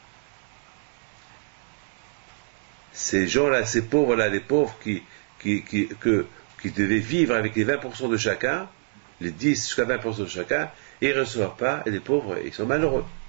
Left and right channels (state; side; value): silent; left; digital silence